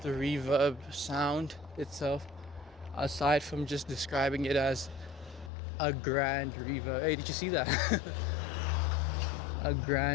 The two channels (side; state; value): right; drops out; at 5.5 s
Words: the reverb sound itself, aside from just describing it as a grand reverb. Hey, did you see that? A